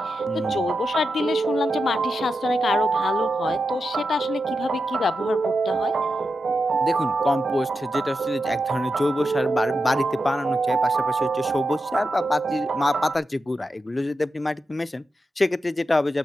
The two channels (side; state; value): both; normal; correlation 0.88